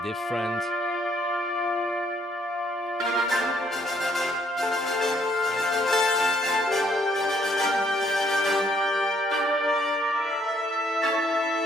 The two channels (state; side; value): normal; both; correlation 0.68